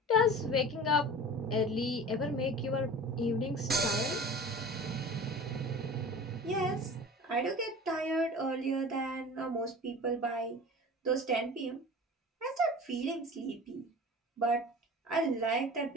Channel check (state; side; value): normal; both; correlation 0.37